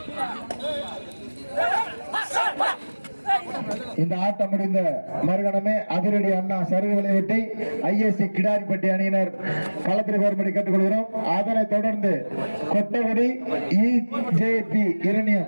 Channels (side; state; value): both; inverted; correlation -1.00